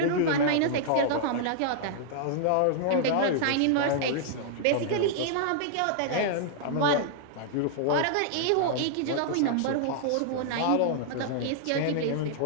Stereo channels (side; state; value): both; different; correlation -0.01